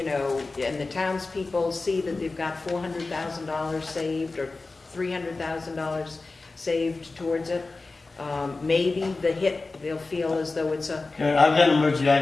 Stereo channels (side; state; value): right; quieter; 3.6 dB